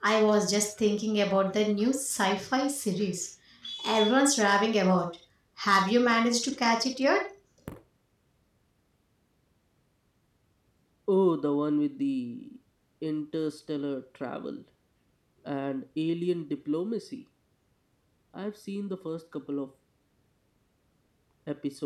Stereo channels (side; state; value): both; identical; correlation 1.00